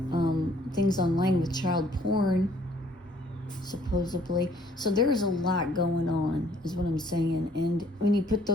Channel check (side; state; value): both; normal; correlation 0.62